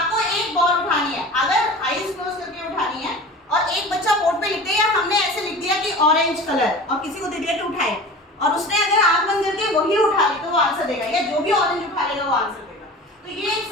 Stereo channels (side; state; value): both; normal; correlation 0.37